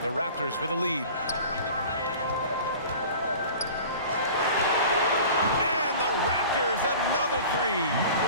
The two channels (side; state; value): both; inverted; correlation -0.41